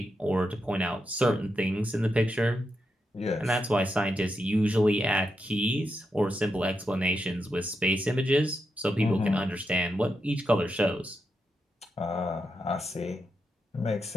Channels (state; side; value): normal; both; correlation 0.85